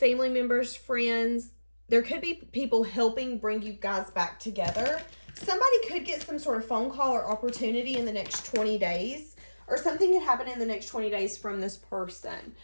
members, friends. There could be people helping bring you guys back together. Somebody could get some sort of phone call or opportunity in the next 20 days. Or something could happen in the next 20 days from this person.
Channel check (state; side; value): inverted; both; correlation -1.00